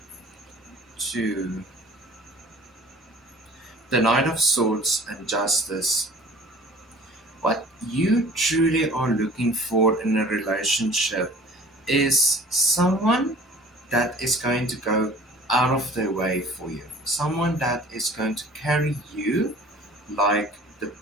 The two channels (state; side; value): normal; both; correlation 0.48